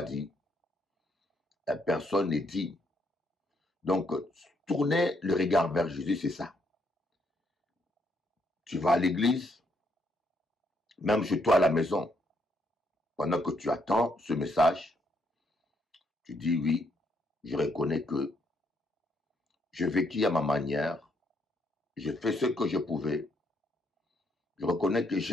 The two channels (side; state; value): both; normal; correlation 0.74